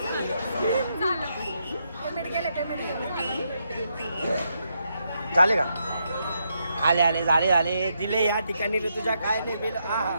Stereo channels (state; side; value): inverted; both; correlation -0.80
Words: झालं. पेमेंट गेले पेमेंट गेले. झाले का आले झाले दिले या ठिकाणी ऋतुजा काय नाही बिल